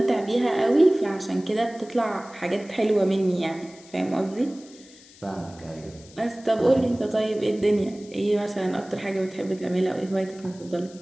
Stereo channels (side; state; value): left; noise; hiss, 23 dB below the sound